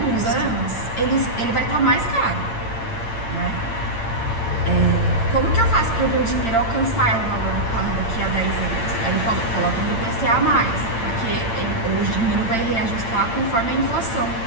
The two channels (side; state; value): right; late; 8.8 ms